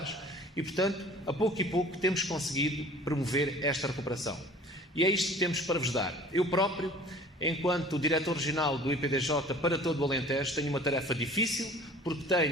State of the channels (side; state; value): both; normal; correlation 0.47